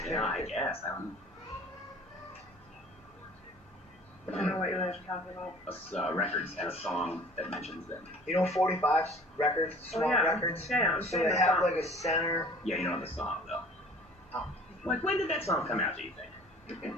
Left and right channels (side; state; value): both; normal; correlation 0.48